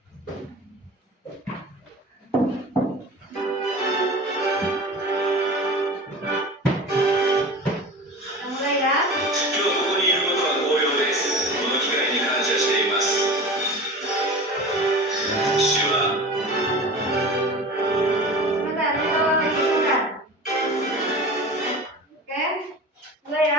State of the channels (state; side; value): normal; both; correlation 0.35